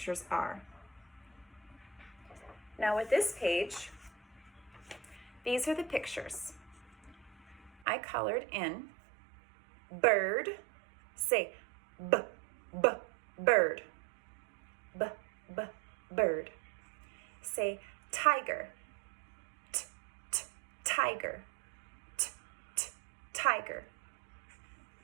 are. Now with this page, these are the pictures. I colored in bird, say b, bird, b, bird. Say tiger, t, tiger. Tiger.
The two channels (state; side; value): drops out; left; at 7.7 s